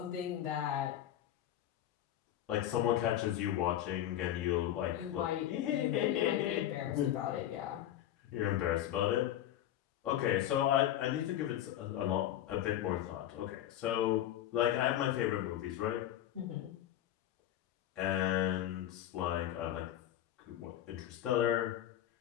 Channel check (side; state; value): right; quieter; 12.1 dB